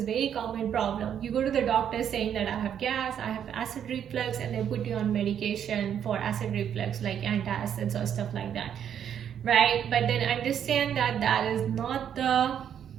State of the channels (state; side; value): quieter; left; 9.0 dB